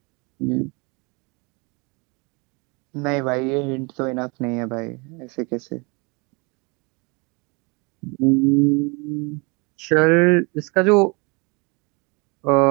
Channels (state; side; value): quieter; left; 29.7 dB